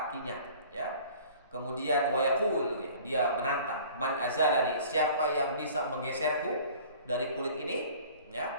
ya. Kemudian wa yaqul, dia menantang, man azalani, siapa yang bisa menggeserku dari kulit ini ya,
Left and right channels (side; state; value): both; inverted; correlation -0.48